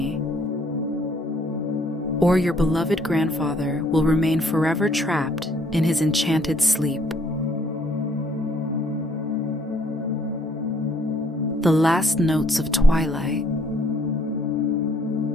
or your beloved grandfather will remain forever trapped in his enchanted sleep. The last notes of twilight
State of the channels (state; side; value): normal; both; correlation 0.65